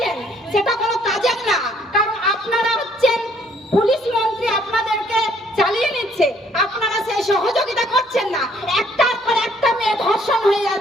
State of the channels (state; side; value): normal; both; correlation 0.63